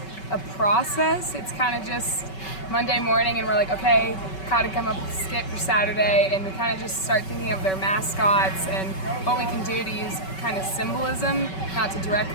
a process. It's kind of just Monday morning and we're like, okay, gotta come up with a skit for Saturday, and we kind of just start thinking of their mascots and what we can do to use kind of symbolism, not to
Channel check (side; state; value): right; late; 5.3 ms